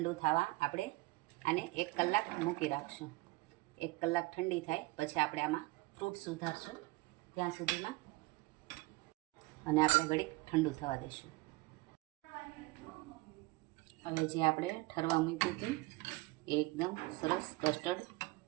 થવા આપણે આને 1 કલાક મૂકી રાખશું। 1 કલાક ઠંડી થાય પછી આપણે આમાં ફ્રૂટ સુધારશું ત્યાં સુધીમાં, અને આપણે ઘડીક ઠંડુ થવા દઈશું। હવે જે આપણે ઠરવા મૂક્યું હતું એ એકદમ સરસ કસ્ટર્ડ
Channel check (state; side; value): quieter; left; 21.6 dB